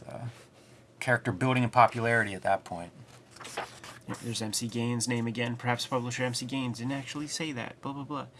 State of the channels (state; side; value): identical; both; correlation 1.00